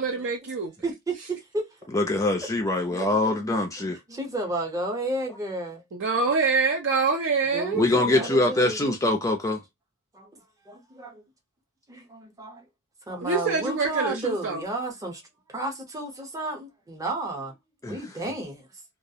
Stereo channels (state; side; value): normal; both; correlation 0.28